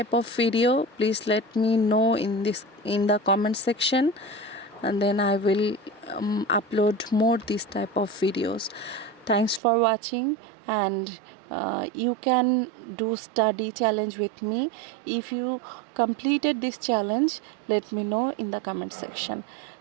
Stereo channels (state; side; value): drops out; left; at 9.6 s